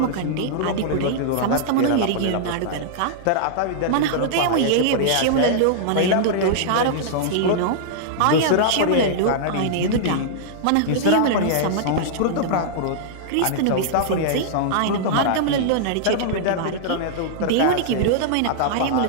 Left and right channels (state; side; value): different; both; correlation -0.02